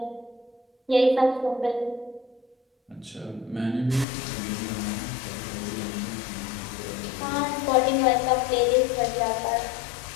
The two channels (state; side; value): drops out; right; at 4.0 s